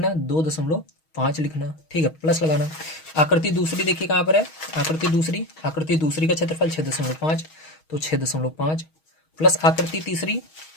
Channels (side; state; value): right; late; 6.3 ms